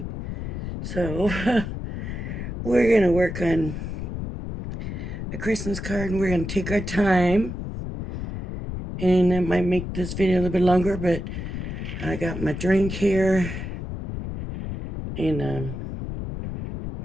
So, we're gonna work on a Christmas card, and we're gonna take our time, and it might make this video a little bit longer, but I got my drink here, and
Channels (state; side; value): noise; left; rumble, 6 dB below the sound